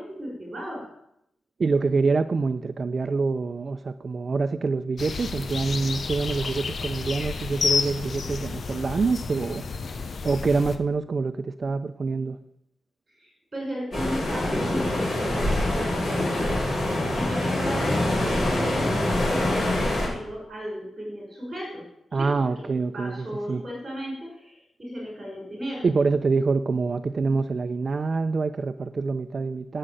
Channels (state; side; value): normal; both; correlation 0.91